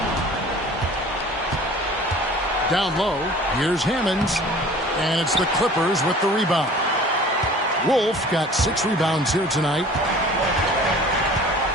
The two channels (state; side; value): normal; both; correlation 0.46